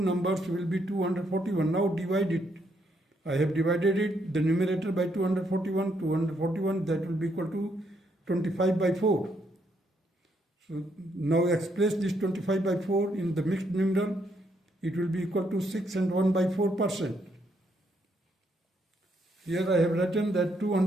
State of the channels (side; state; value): both; normal; correlation 0.74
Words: will be 241. Now divide it. I have divided it, the numerator by 241, that will be equal to 25 by 4. So now express this 25 by 4 in the mixed number, it will be equal to 6 and 1 by 4%. Here I have written that